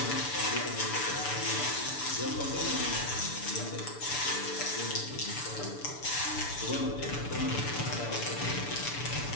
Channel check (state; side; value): late; right; 6.9 ms